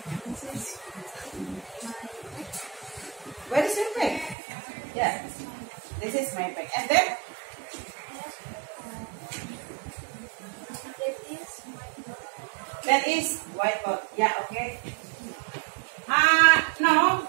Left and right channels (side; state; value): left; drops out; at 4.4 s